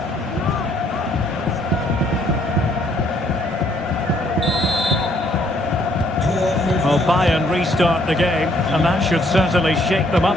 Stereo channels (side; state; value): both; normal; correlation 0.66